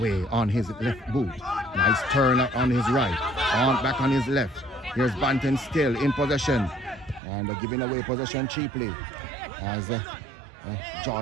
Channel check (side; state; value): left; drops out; at 7.2 s